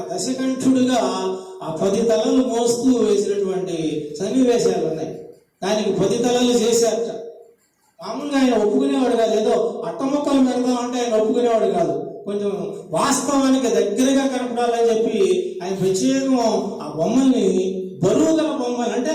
దశకంఠుడిగా ఆ 10 తలలు మోస్తూ వేసినటువంటి సన్నివేశాలు ఉన్నాయి. దానికి 10 తలలు చేశారట. మామూలుగా ఆయన ఒప్పుకునేవాడు కాదు, ఏదో అట్టముక్కలు పెడదాం అంటే ఆయన ఒప్పుకునేవాడు కాదు. కొంచెం వాస్తవానికి దగ్గరగా కనపడాలని చెప్పి ఆయన ప్రత్యేకం ఆ బొమ్మల్ని బరువు గల బొమ్మలు, అంటే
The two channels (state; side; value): identical; both; correlation 1.00